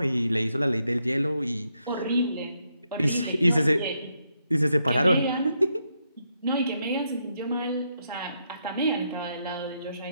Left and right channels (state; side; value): inverted; both; correlation -0.80